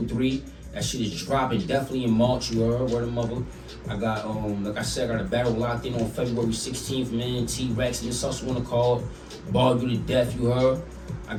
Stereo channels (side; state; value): both; identical; correlation 1.00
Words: 3. That shit is dropping definitely in March, you heard. Word of mother. I got, like I said, I got a battle locked in on February 16th, man. T-Rex and this also wanna call it. Ball You to Death, you heard. I